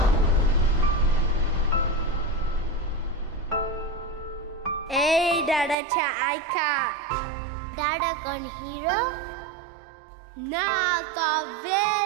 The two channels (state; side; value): drops out; left; at 5.8 s